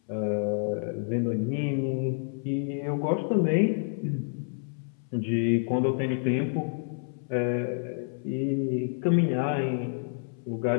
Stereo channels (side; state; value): right; silent; 59 dB below the other